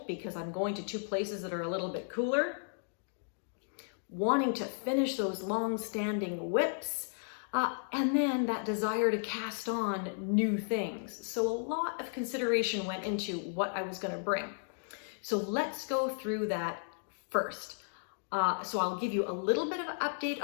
because I'm going to two places that are a little bit cooler, wanting to finish those long-standing whips, and then that desire to cast on new things. So a lot of consideration went into what I was going to bring. So let's go through that first. So I'll give you a little bit of an update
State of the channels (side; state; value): right; silent; digital silence